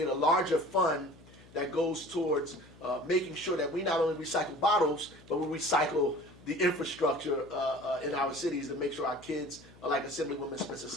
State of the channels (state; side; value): noise; left; hum, 23 dB below the sound